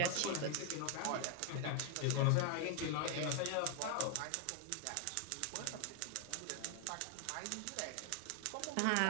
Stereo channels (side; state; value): both; different; correlation 0.00